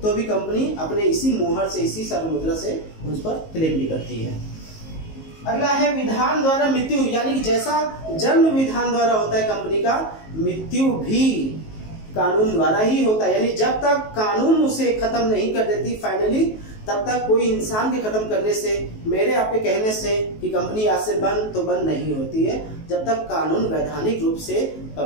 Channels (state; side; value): late; right; 19 ms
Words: तो भी कंपनी अपने इसी मुहर से, इसी सार मुद्रा से उस पर क्लेम भी करती है। अगला है विधान द्वारा मृत्यु, यानी जैसा जन्म विधान द्वारा होता है कंपनी का, मृत्यु भी कानून द्वारा ही होता है। यानी जब तक कानून उसे खत्म नहीं कर देती फाइनली, तब तक कोई इंसान के खत्म करने से, मेरे आपके कहने से कि कंपनी आज से बंद, तो बंद नहीं होती है जब तक कानून वैधानिक रूप से